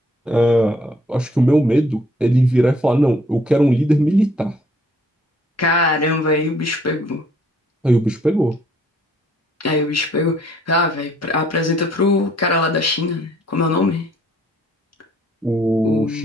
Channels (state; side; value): normal; both; correlation 0.63